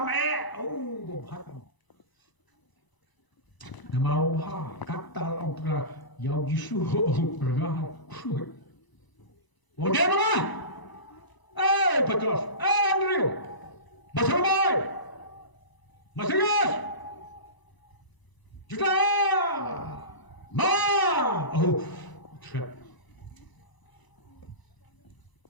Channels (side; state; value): right; late; 1.0 ms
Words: Nama bahar kata orang yang jisu pernah. Oh dia mana? Petrus, Andrew, Basamai, Masias, Juta, trap.